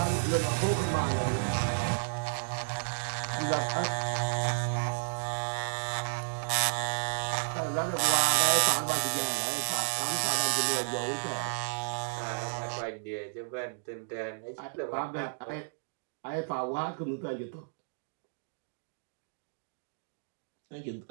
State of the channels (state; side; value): silent; left; digital silence